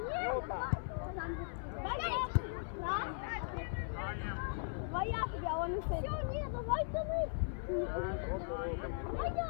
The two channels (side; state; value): right; silent; 52 dB below the other